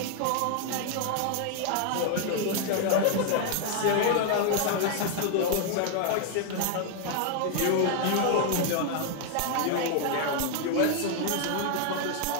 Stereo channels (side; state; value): both; different; correlation 0.00